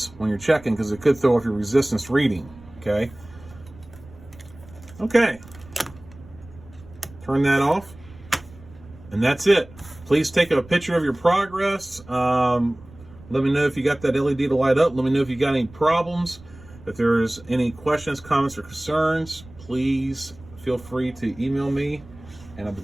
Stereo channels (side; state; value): right; noise; rumble, 21 dB below the sound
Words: when you're checking, because it could throw off your resistance reading. Okay. Okay. Turn that off, and that's it. Please take a picture of your progress. Let me know if you got that LED to light up. Let me know if you got any problems. If there's any questions, comments, or concerns, please feel free to email me, and I'll be